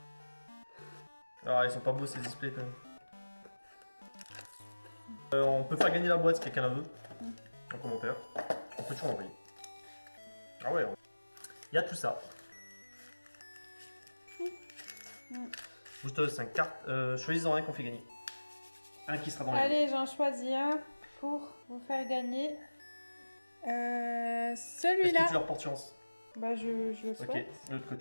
Ah, ils sont pas beaux ces displays quand même. On peut faire gagner la boîte si quelqu'un la veut. En commentaire. On peut toujours l'envoyer. Ah ouais. Il y a tout ça. Booster de 5 cartes. Choisis-en un qu'on fait gagner. Un qui sera dans les. Allez, j'en choisis un pour vous faire gagner. Est-ce Celui-là. que tu leur portes chance? Bah, je le souhaite. Ok, de l'autre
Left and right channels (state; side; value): inverted; both; correlation -1.00